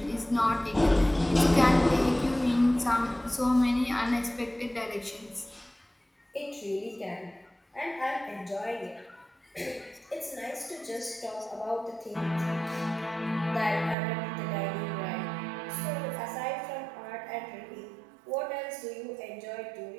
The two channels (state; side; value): drops out; left; at 14.0 s